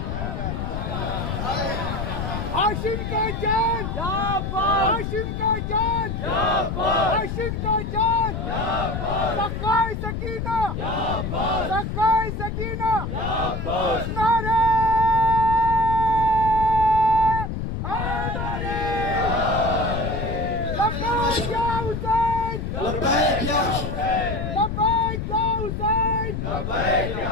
ہاشم کا جان، ہاشم کا جان، ہاشم کا جان، سقائے سکینہ، سقائے سکینہ، نعرہ حیدری۔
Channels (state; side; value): noise; left; rumble, 4 dB below the sound